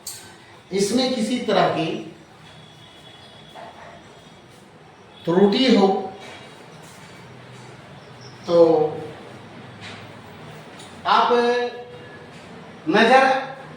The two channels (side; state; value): both; identical; correlation 1.00